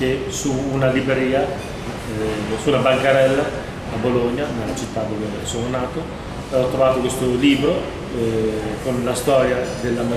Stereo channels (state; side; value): identical; both; correlation 1.00